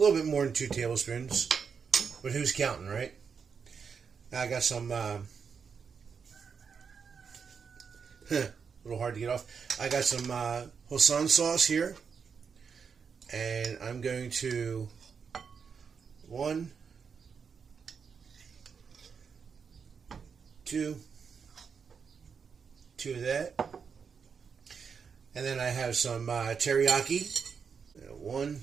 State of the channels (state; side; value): quieter; left; 6.1 dB